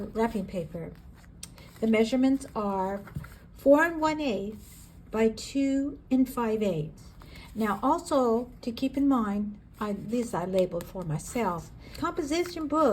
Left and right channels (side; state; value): both; identical; correlation 1.00